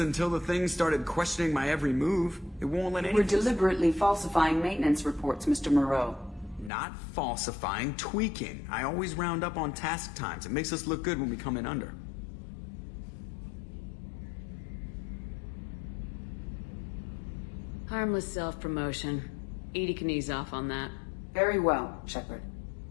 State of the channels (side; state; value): right; drops out; at 6.7 s